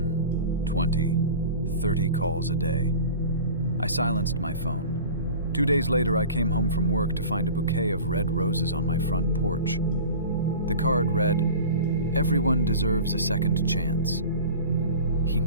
20, 30 calls a day. I silenced my phone. 2 days later, I came home from work to find a bouquet of red roses on my front porch. The card read, Everyone deserves a second chance. He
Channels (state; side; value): inverted; both; correlation -0.37